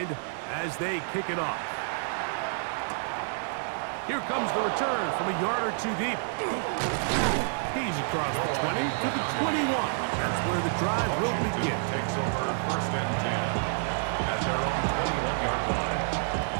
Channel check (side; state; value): left; silent; digital silence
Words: as they kick it off. Here comes the return from a yard or two deep. He's across the 20 to the 21. That's where the drive will begin. Takes over first and 10 at their own 21-yard line.